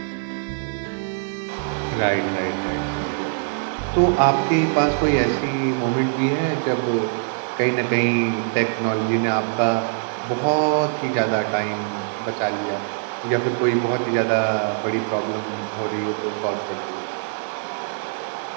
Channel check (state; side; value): silent; left; digital silence